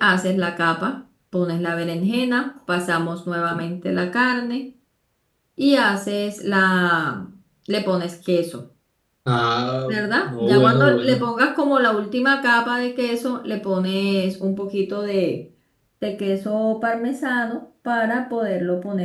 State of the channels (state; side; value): identical; both; correlation 1.00